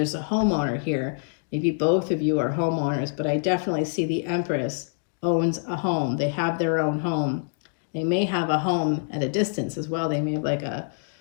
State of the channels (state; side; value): silent; right; digital silence